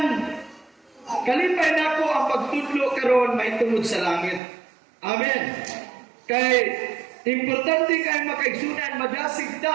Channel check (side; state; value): left; drops out; at 4.4 s